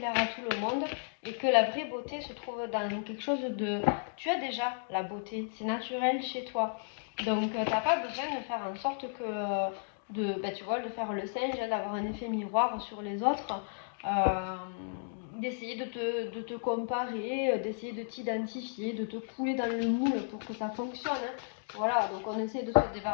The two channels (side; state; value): right; silent; digital silence